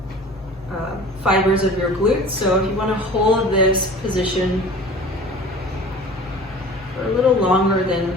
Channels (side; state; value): both; normal; correlation 0.42